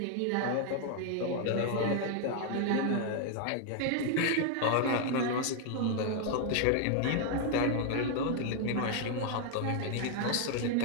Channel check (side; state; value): both; different; correlation 0.00